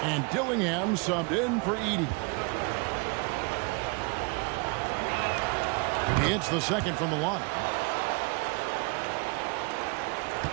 And Dillingham subbed in for Edey. He hits the second from the line.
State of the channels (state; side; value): quieter; left; 31.7 dB